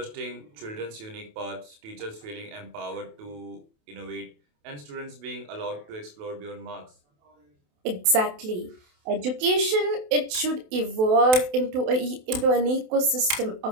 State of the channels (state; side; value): late; left; 28 ms